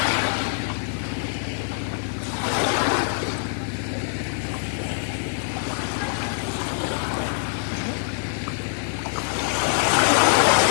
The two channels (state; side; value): silent; right; digital silence